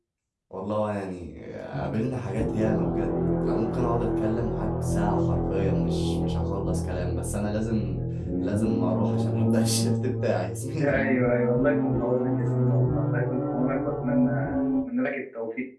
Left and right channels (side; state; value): both; identical; correlation 1.00